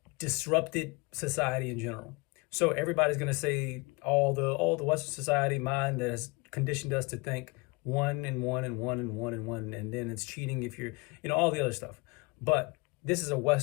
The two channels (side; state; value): right; quieter; 26.4 dB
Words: disrupted society in general. So everybody's going to say all the Western society mind that has conditioned us to think one and one and one and one and one, and then it's cheating if you're, all the other stuff. But this is a